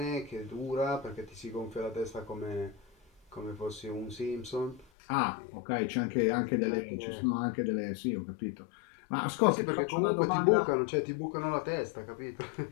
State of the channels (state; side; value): drops out; right; at 4.9 s